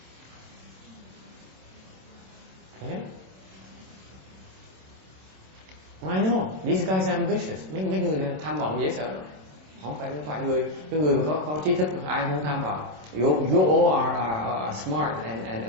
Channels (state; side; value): late; left; 27 ms